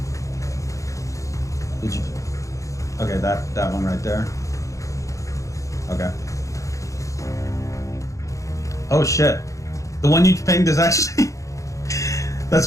did you? Okay, that one right there. Okay. Oh shit! The one you pinged is actually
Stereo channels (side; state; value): right; late; 0.15 ms